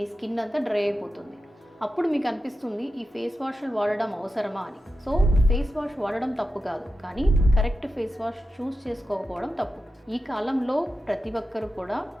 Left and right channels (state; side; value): normal; both; correlation 0.91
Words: స్కిన్ అంతా డ్రై అయిపోతుంది. అప్పుడు మీకు అనిపిస్తుంది ఈ ఫేస్ వాష్లు వాడడం అవసరమా అని. సో ఫేస్ వాష్ వాడడం తప్పు కాదు, కానీ కరెక్ట్ ఫేస్ వాష్ చూస్ చేసుకోకపోవడం తప్పు. ఈ కాలంలో ప్రతి ఒక్కరు కూడా